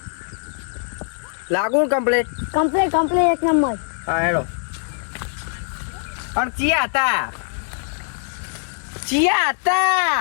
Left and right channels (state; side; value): silent; right; digital silence